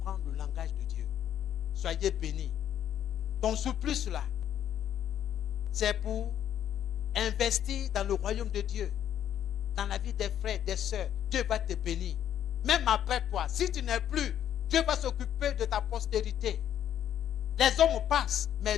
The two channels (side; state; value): right; quieter; 10.4 dB